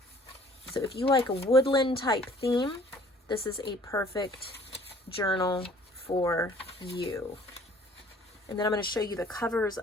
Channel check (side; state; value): both; normal; correlation 0.54